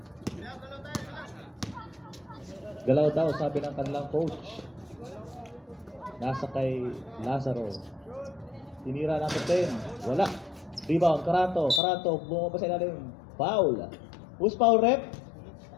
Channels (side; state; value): right; drops out; at 11.8 s